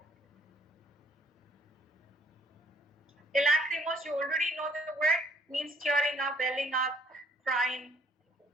Lacrimose, you already know the word, means tearing up, welling up, crying,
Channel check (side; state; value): both; normal; correlation 0.64